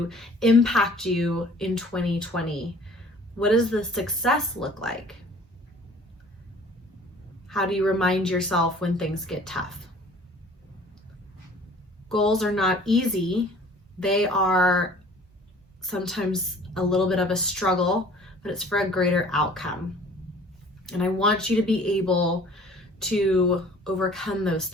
impact you in 2020? What does the success look like? How do you remind yourself when things get tough? Goals are not easy. They are sometimes a little bit of a struggle, but it's for a greater outcome. And I want you to be able to overcome those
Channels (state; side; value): normal; both; correlation 0.51